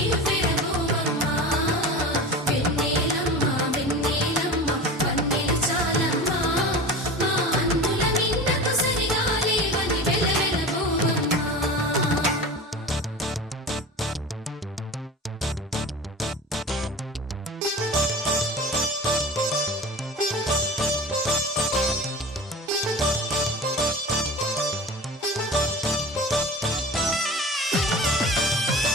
వెన్నెలమ్మ వెన్నెలమ్మ పన్నెలు చాలమ్మా మా అందుల నిన్నకు సరిగా లేవని వెలవెలపోవమ్మా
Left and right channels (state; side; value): normal; both; correlation 0.33